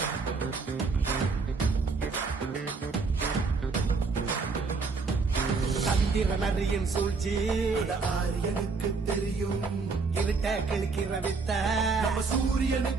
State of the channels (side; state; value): left; quieter; 4.5 dB